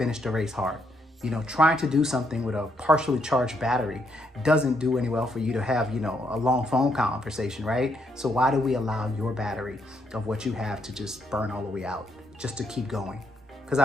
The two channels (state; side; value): normal; both; correlation 0.75